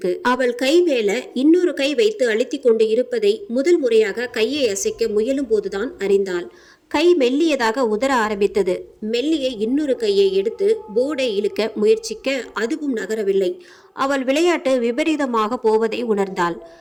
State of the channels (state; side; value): identical; both; correlation 1.00